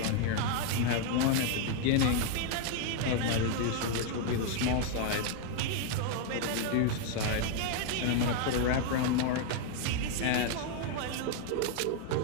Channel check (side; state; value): both; different; correlation 0.00